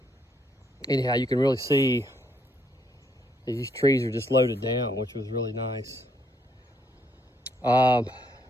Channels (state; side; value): normal; both; correlation 0.72